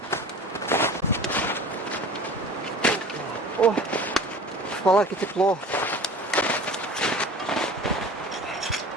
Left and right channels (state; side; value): normal; both; correlation 0.40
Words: О, в палатке тепло.